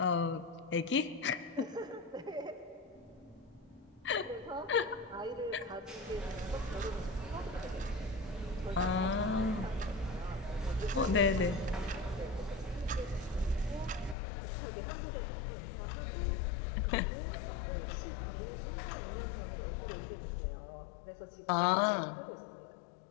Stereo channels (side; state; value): right; drops out; at 14.2 s